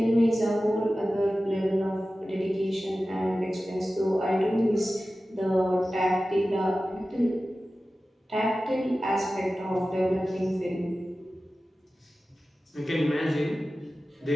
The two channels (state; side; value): normal; both; correlation 0.95